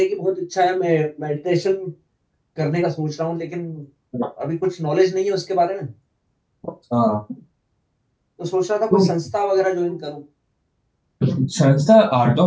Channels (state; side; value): identical; both; correlation 1.00